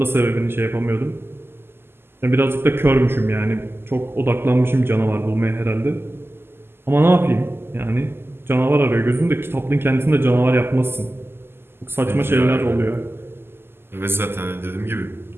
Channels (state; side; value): late; left; 0.11 ms